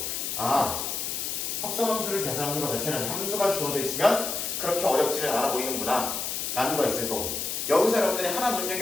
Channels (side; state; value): left; noise; hiss, 2 dB below the sound